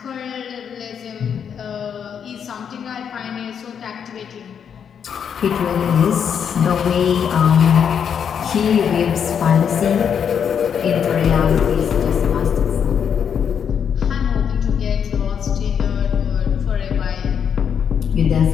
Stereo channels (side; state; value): right; quieter; 7.7 dB